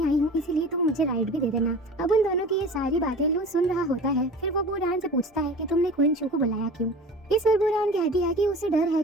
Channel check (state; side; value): normal; both; correlation 0.38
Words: आई हूँ, इसीलिए तुम मुझे राइड भी दे देना। अब उन दोनों की ये सारी बातें लू सुन रहा होता है। फिर वो बूरान से पूछता है कि तुमने क्वीन शू को बुलाया क्यों। इस पर बूरान कहती है कि उसे डर है